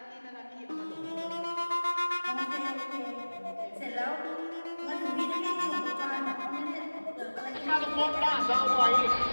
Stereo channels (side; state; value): both; inverted; correlation -1.00